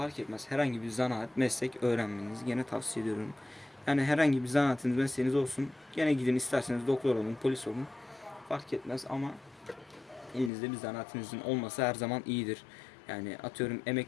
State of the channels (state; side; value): drops out; right; at 10.5 s